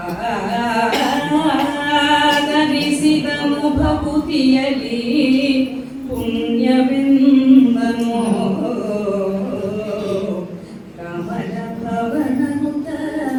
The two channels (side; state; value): both; identical; correlation 1.00